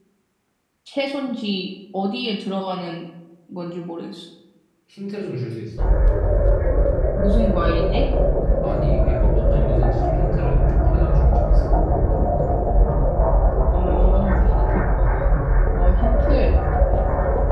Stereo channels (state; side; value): identical; both; correlation 1.00